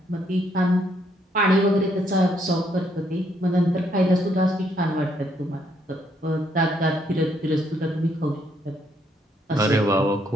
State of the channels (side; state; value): both; normal; correlation 0.72